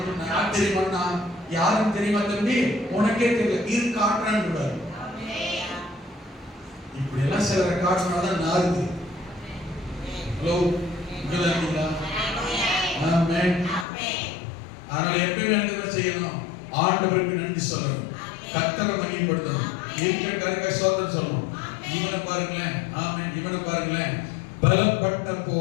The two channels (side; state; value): right; drops out; at 13.9 s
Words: யார் தெரியுமா, யாரும் தெரியுமா தம்பி, உனக்கே தெரியல, இது காட்டுறான்னு கூடாது. இப்படி எல்லாம் சிலரை காட்டினாதான் நாருது. ஹலோ, இங்கதான். ஆமென். அதனால எப்பயுமே என்ன செய்யணும், ஆண்டவருக்கு நன்றி சொல்லணும், கர்த்தரை மகிமைப்படுத்தணும், இருக்கிற காரியத்தை சோதனை சொல்லணும். இவனை பாருங்களேன். ஆமென். இவனை பாருங்களேன், பலப்பட்ட